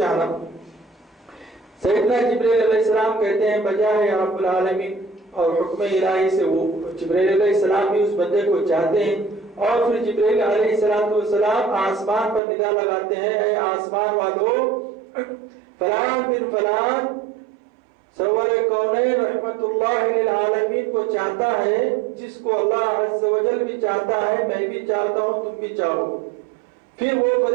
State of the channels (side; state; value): left; drops out; at 12.4 s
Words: سیدنا جبرائیل علیہ السلام کہتے ہیں بجائے یا رب العالمین، اور حکم الہی سے وہ جبرائیل علیہ السلام بھی اس بندے کو چاہتے ہیں، اور پھر جبرائیل علیہ السلام آسمان پر ندا لگاتے ہیں، اے آسمان والو فلان بن فلان سرور کونین رحمت اللہ للعالمین کو چاہتا ہے، جس کو اللہ عز و جل بھی چاہتا ہے، میں بھی چاہتا ہوں، تم بھی چاہو۔ پھر وہ